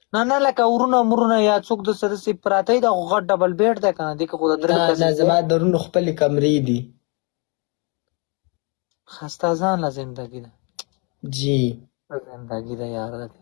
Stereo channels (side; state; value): right; quieter; 32.9 dB